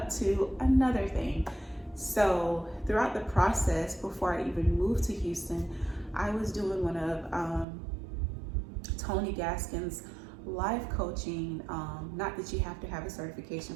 to another thing. So throughout the process, before I even moved to Houston, I was doing one of Tony Gaskin's life coaching. Not that you have to have a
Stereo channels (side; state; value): left; drops out; at 7.7 s